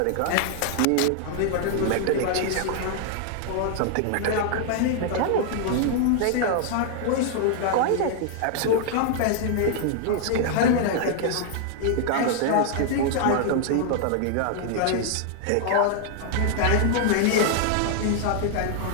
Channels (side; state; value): both; different; correlation 0.00